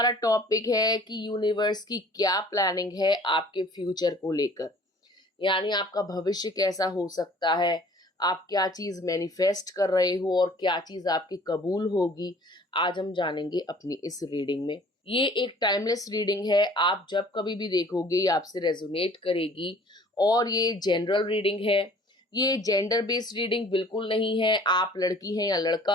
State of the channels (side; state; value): both; normal; correlation 0.52